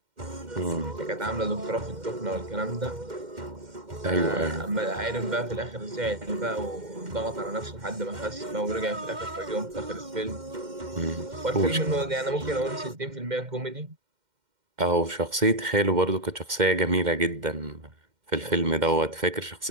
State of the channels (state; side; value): late; left; 2.1 ms